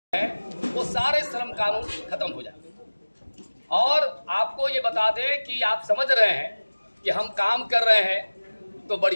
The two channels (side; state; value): both; inverted; correlation -1.00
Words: है वो सारे श्रम कानून खत्म हो जाए। और आपको ये बता दें कि आप समझ रहे हैं कि हम काम कर रहे हैं तो